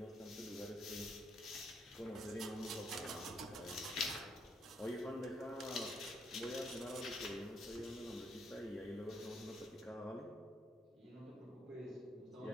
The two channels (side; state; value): both; normal; correlation 0.72